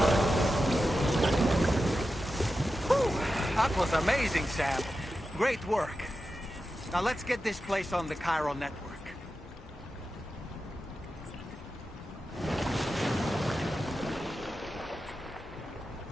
That was amazing, Sam. Great work. Now let's get this place on the Chiral network.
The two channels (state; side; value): normal; both; correlation 0.91